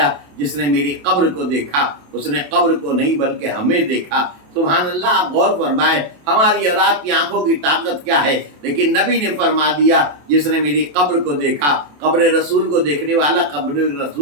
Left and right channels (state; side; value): late; left; 27 ms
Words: جس نے میری قبر کو دیکھا اس نے قبر کو نہیں بلکہ ہمیں دیکھا۔ سبحان اللہ، آپ غور فرمائیں ہماری اور آپ کی آنکھوں کی طاقت کیا ہے، لیکن نبی نے فرما دیا جس نے میری قبر کو دیکھا۔ قبر رسول کو دیکھنے والا قبر